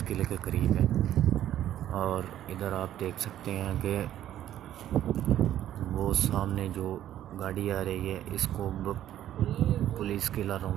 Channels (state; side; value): quieter; left; 11.9 dB